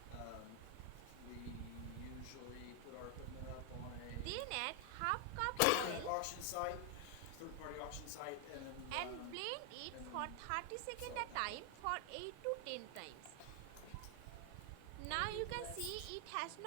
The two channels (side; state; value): both; different; correlation 0.00